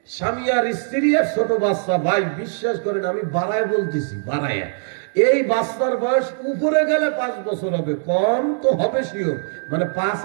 স্বামী আর স্ত্রী আর ছোট বাচ্চা। ভাই বিশ্বাস করেন, আমি বাড়ায় বলতেছি, বাড়ায়, এই বাচ্চার বয়স উপরে গেলে 5 বছর হবে, কম তো হবে শিওর, মানে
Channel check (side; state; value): left; silent; 65 dB below the other